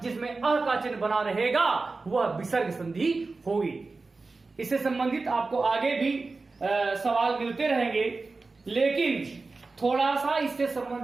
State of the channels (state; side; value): quieter; left; 3.8 dB